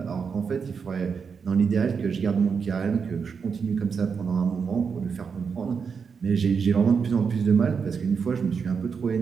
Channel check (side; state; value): left; quieter; 6.0 dB